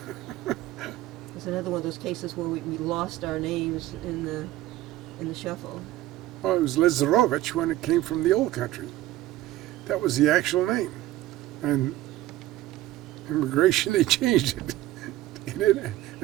It's another one of those cases where we lost our names in the shuffle. Well, it was Lazarovich when it came from the old country. That was the actual name. And immigration, they changed it.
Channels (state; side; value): quieter; left; 15.3 dB